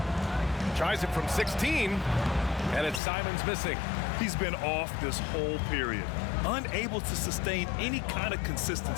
Tries it from 16, and it's Simon's missing. He's been off this whole period, unable to sustain any kind of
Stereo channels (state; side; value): drops out; right; at 3.0 s